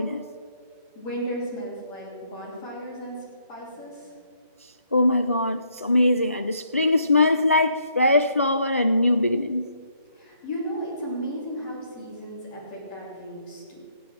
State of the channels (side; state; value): both; inverted; correlation -0.71